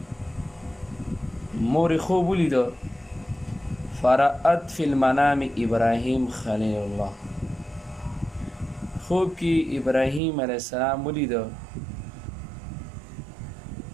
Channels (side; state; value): left; drops out; at 10.2 s